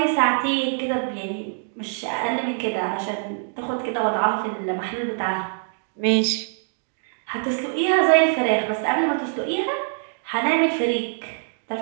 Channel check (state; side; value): silent; left; digital silence